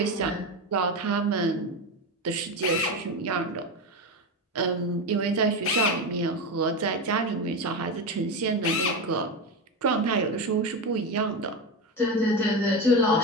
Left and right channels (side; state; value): both; normal; correlation 0.17